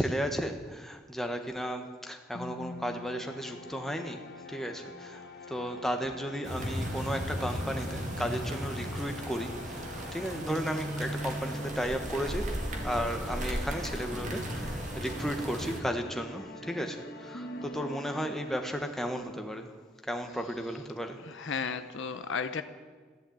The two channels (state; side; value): normal; both; correlation 0.76